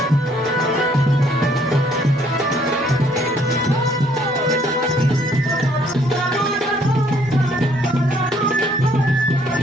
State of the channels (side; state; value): both; normal; correlation 0.64